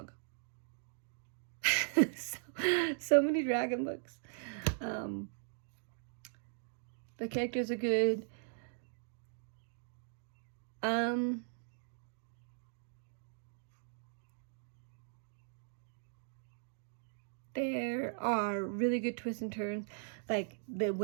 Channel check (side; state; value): left; silent; digital silence